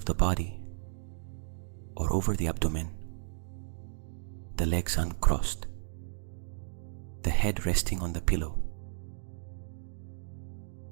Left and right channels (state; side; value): silent; left; digital silence